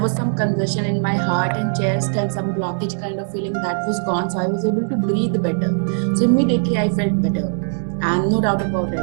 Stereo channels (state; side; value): silent; left; digital silence